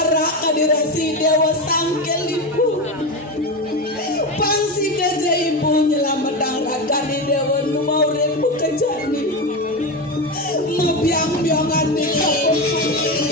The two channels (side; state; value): both; normal; correlation 0.17